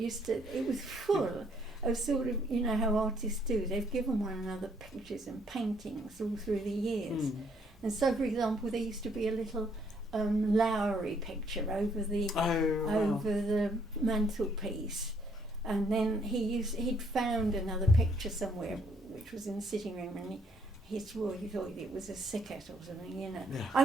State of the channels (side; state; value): both; normal; correlation 0.68